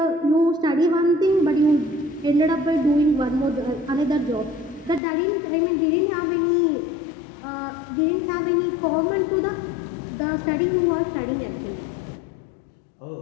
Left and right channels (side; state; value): right; drops out; at 5.0 s